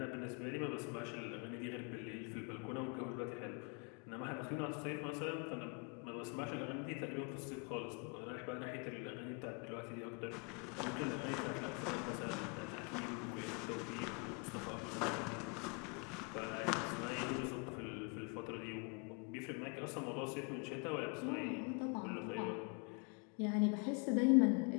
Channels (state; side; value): quieter; right; 35.2 dB